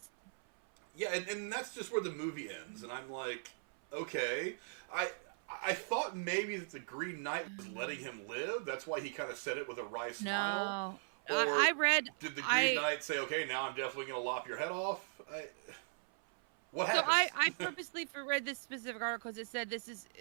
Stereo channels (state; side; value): silent; left; 52 dB below the other